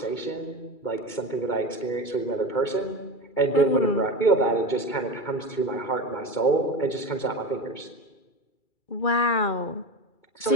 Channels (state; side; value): late; right; 2.2 ms